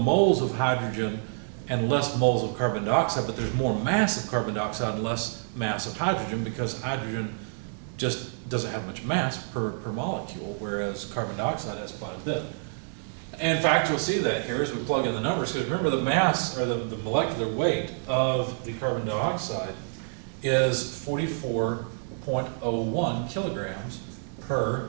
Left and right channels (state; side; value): silent; left; 60 dB below the other